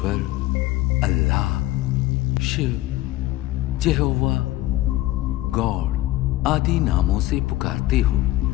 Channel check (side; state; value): right; quieter; 16.7 dB